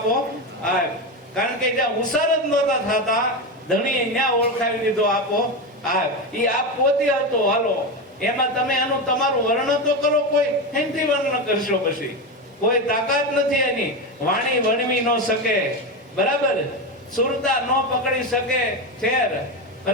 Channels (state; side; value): normal; both; correlation 0.16